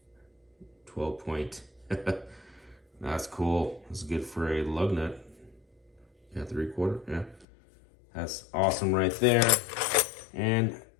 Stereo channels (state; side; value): drops out; right; at 7.5 s